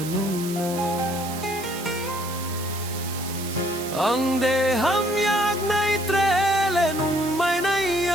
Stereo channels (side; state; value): right; noise; hiss, 10 dB below the sound